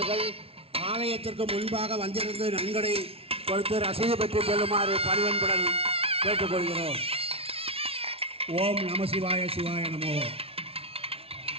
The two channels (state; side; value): late; left; 0.28 ms